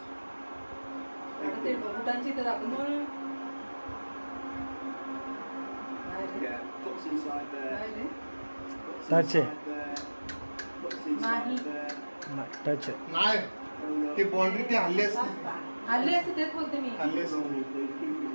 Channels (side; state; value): both; inverted; correlation -1.00